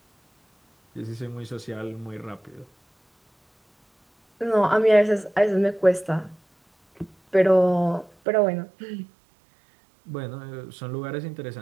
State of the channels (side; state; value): left; drops out; at 8.2 s